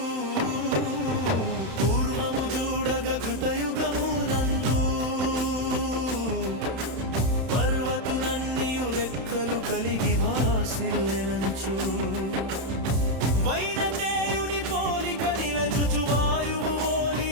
పూర్వము చూడగ కృతయుగము రెక్కలు కలిగి వాసిల్లెనంచు వైనతేయుని పోలిక నిలజుచు వాయువు ఓలి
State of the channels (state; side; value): late; left; 31 ms